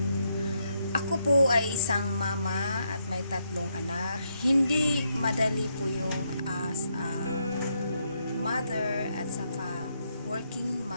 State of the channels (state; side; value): inverted; both; correlation -0.78